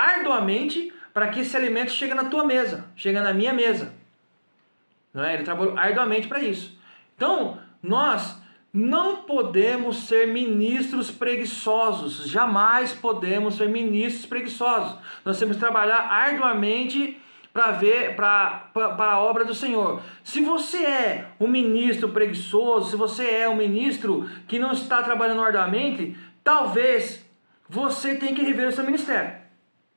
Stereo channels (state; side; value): inverted; both; correlation -1.00